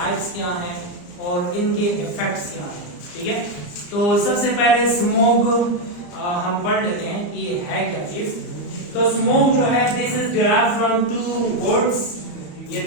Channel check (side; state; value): right; late; 34 ms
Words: क्या हैं और इनके इफेक्ट्स क्या हैं। ठीक है, तो सबसे पहले स्मोग हम पढ़ लेते हैं कि ये है क्या चीज। तो स्मोग जो है, this is derived from two words. ये